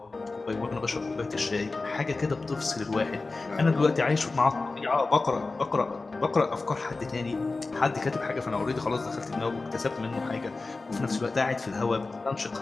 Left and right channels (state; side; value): quieter; right; 3.6 dB